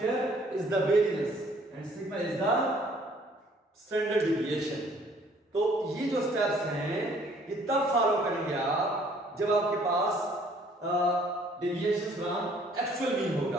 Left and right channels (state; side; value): normal; both; correlation 0.59